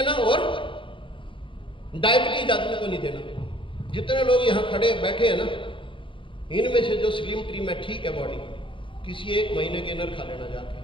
और डायबिटीज आदमी को नहीं देना। जितने लोग यहां खड़े बैठे हैं ना, इनमें से जो स्लिम ट्रिम है, ठीक है बॉडी, किसी 1 महीने गेनर खा लेना जाके।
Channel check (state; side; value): late; right; 0.25 ms